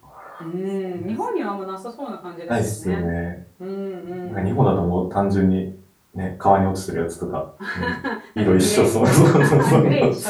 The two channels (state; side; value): identical; both; correlation 1.00